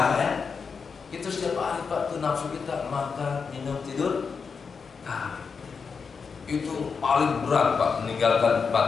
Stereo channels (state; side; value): quieter; right; 5.5 dB